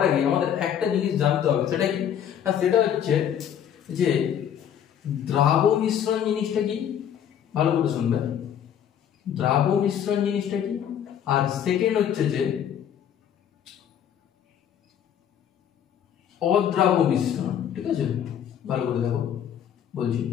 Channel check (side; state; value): right; quieter; 9.3 dB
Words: আগে আমাদের একটা জিনিস জানতে হবে, সেটা কি না, সেটা হচ্ছে যে দ্রাব মিশ্রণ জিনিসটা কি, ভালো করে শুনবে, দ্রাব মিশ্রণ জিনিসটা কি, আর সেকেন্ড হচ্ছে যে অদ্রাব মিশ্রণ। ঠিক আছে, ভালো করে দেখো বলছি।